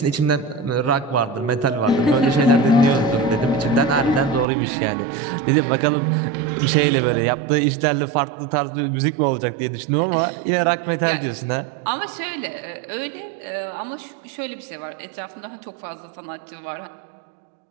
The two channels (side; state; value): left; drops out; at 4.5 s